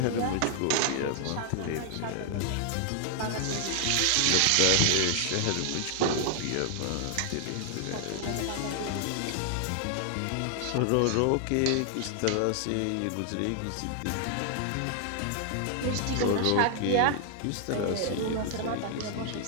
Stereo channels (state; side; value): different; both; correlation 0.00